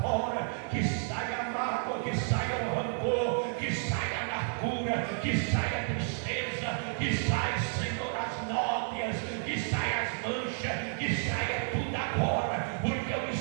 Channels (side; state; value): left; silent; 56 dB below the other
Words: fora, que saia a mágoa, que saia o rancor, que saia a amargura, que saia a tristeza, que saia, Senhor, as nódoas, que saia as manchas, que saia tudo agora, porque o